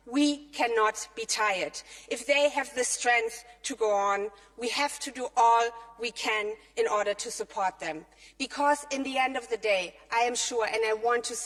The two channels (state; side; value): identical; both; correlation 1.00